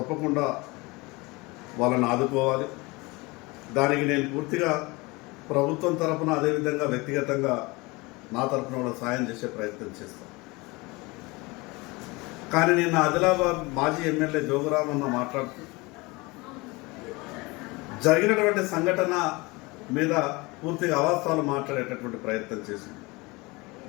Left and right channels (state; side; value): quieter; right; 24.3 dB